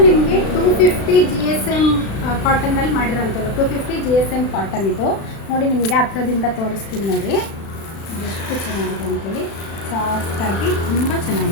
ನಿಮಗೆ 250 GSM ಕಾಟನ್ನಲ್ಲಿ ಮಾಡಿರೋಂಥದ್ದು. 250 GSM ಕಾಟನ್ ಇದು ನೋಡಿ. ನಿಮಗೆ ಹತ್ರದಿಂದ ತೋರಿಸ್ತೀನಿ ನೋಡಿ, ಎಷ್ಟು ಚೆನ್ನಾಗಿದೆ ಅಂತೇಳಿ. ಸಾಫ್ಟಾಗಿ ತುಂಬ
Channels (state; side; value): late; right; 36 ms